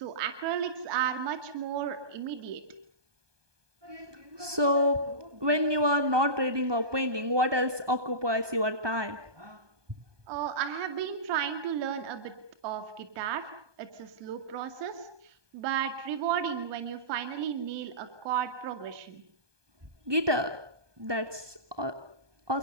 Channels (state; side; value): late; left; 1.2 ms